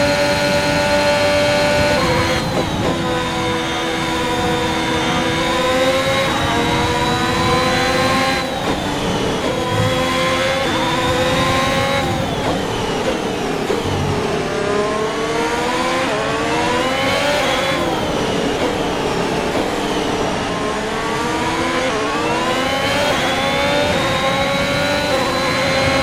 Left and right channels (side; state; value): both; identical; correlation 1.00